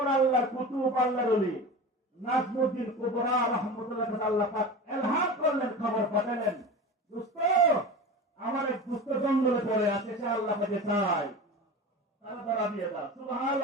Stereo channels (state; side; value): normal; both; correlation 0.31